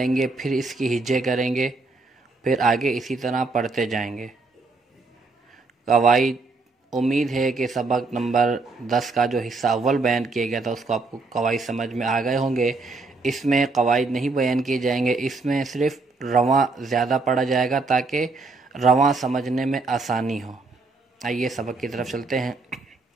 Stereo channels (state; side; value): quieter; left; 3.7 dB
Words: گے، پھر اس کی ہجے کریں گے، پھر آگے اسی طرح پڑھتے جائیں گے۔ قواعد، امید ہے کہ سبق نمبر 10 کا جو حصہ اول بیان کیا گیا تھا اس کو آپ کو قواعد سمجھ میں آ گئے ہوں گے۔ اس میں قواعد نہیں بیان کیے جائیں گے، اس میں صرف رواں زیادہ پڑھا جائے گا تاکہ رواں سمجھنے میں آسانی ہو۔ آئیے سبق کی طرف چلتے ہیں۔